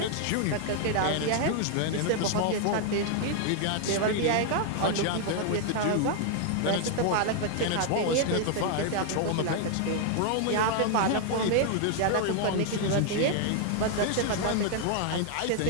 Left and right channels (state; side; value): different; both; correlation 0.00